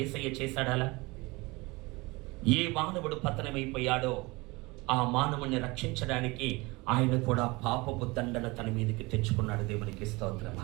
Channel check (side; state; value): left; quieter; 24.1 dB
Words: చేశాడాలా? ఏ మానవుడు పతనమైపోయాడో ఆ మానవుని రక్షించడానికి ఆయన కూడా పాపపు దండన తన మీదకి తెచ్చుకున్నాడు. దేవునికి స్తోత్రం.